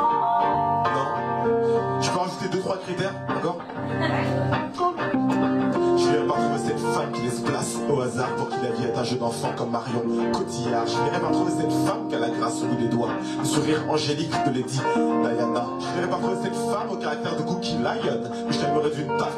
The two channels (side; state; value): both; identical; correlation 1.00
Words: Non. Je peux rajouter 2-3 critères encore? Je viens pas trouver cette femme qui laisse place au hasard pour qui la vie est un jeu d'enfant comme Marion Cotillard. Je viendrai pas trouver cette femme qui a la grâce au bout des doigts, le sourire angélique de Lady Diana. Je viendrai pas trouver cette femme au caractère de Cookie Lion, mais je t'aimerais d'une